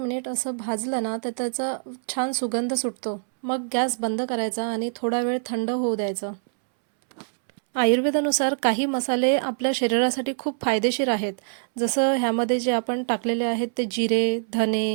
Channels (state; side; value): silent; left; 62 dB below the other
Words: असं भाजलं ना तर त्याचा छान सुगंध सुटतो. मग गॅस बंद करायचा आणि थोडा वेळ थंड होऊ द्यायचं. आयुर्वेदानुसार काही मसाले आपल्या शरीरासाठी खूप फायदेशीर आहेत. जसं ह्यामध्ये जे आपण टाकलेले आहेत ते जिरे,